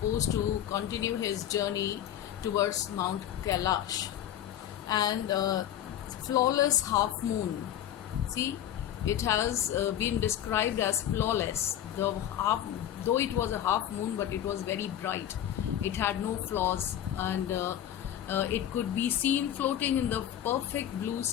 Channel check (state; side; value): quieter; right; 11.1 dB